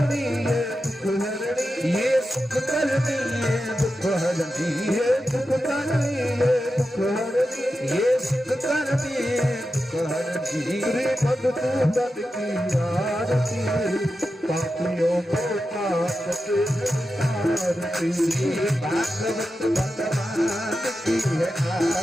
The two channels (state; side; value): normal; both; correlation 0.90